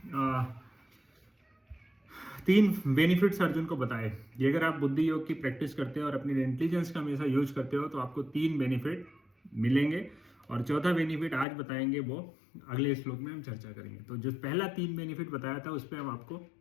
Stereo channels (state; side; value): drops out; right; at 11.5 s